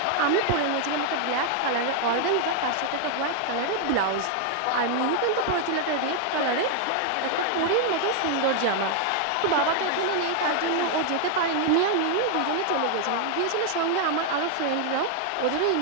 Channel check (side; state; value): both; different; correlation 0.00